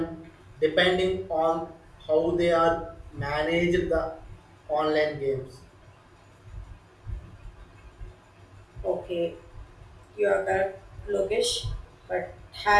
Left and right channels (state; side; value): identical; both; correlation 1.00